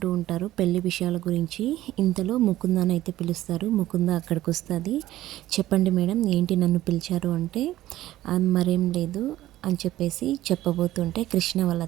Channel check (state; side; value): quieter; left; 14.8 dB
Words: ఉంటారు పెళ్లి విషయాల గురించి. ఇంతలో ముకుందాని అయితే పిలుస్తారు. ముకుంద అక్కడికి వస్తుంది. చెప్పండి మేడం, ఏంటి నన్ను పిలిచారు అంటే, మరేం లేదు అని చెప్పేసి చెప్పబోతుంటే, కృష్ణ వాళ్ళ